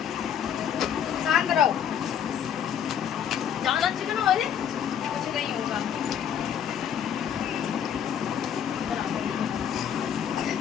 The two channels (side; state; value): right; quieter; 8.8 dB